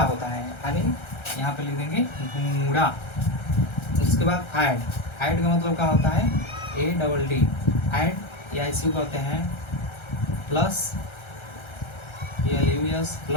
होता है, यानी यहाँ पे लिख देंगे गुणा। उसके बाद ऐड का मतलब क्या होता है? ADD, ऐड, या इसी को कहते हैं प्लस, PLUS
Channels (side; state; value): right; late; 1.3 ms